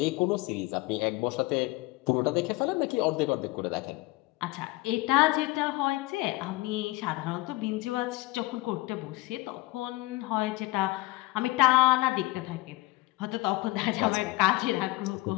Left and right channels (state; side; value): quieter; right; 20.6 dB